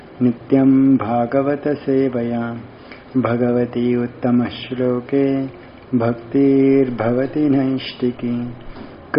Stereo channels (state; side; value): identical; both; correlation 1.00